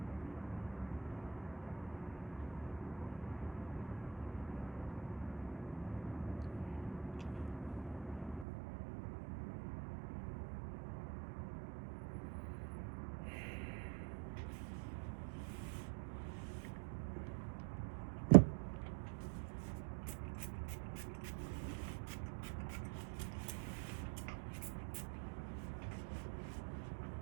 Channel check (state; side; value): drops out; left; at 8.5 s